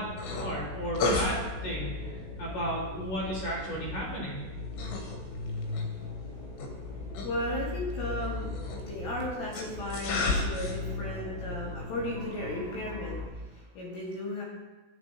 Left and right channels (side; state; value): right; late; 16 ms